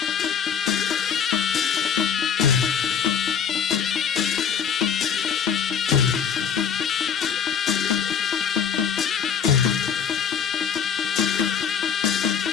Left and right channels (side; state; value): right; quieter; 7.4 dB